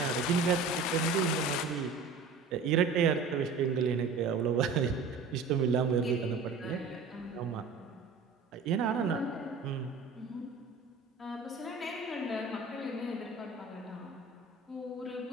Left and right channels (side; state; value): left; quieter; 4.3 dB